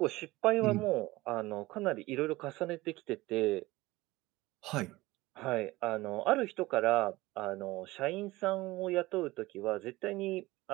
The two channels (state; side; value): quieter; left; 19.4 dB